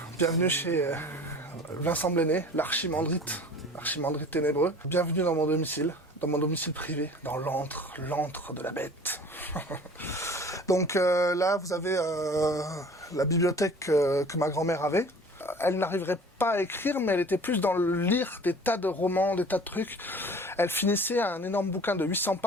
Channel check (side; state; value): both; normal; correlation 0.45